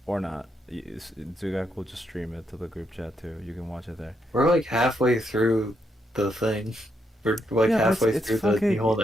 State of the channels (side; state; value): both; normal; correlation 0.79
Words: Or not. Zugak will just stream it to the group chat, too. You can watch it there. We're like halfway through the thing. We're like Yeah, halfway it's through fucking- the Mihon